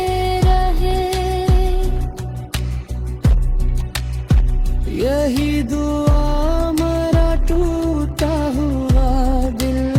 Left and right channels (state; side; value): identical; both; correlation 1.00